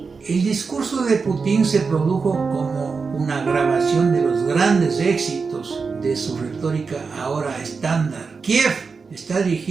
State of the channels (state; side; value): quieter; left; 4.9 dB